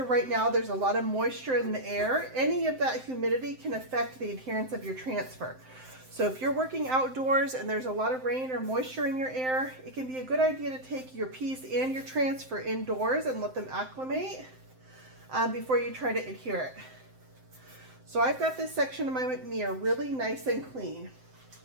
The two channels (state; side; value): late; left; 7.7 ms